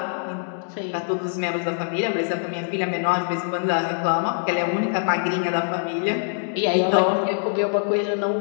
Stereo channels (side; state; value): right; silent; digital silence